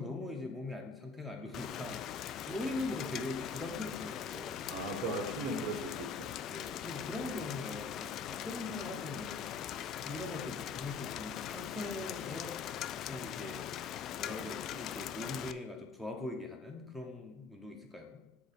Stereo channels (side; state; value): right; quieter; 4.2 dB